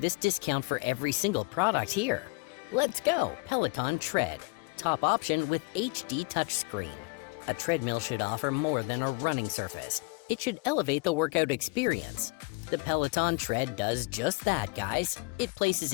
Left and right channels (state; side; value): quieter; right; 28.9 dB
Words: discount for every single product here. Let's go, Peloton Tread. Top option with HD touchscreen. A treadmill should offer more than a running surface. It should elevate the workout experience. The Peloton Tread does just that, guys. It places